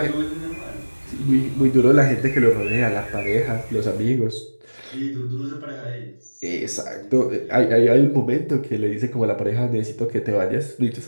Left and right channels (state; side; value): inverted; both; correlation -1.00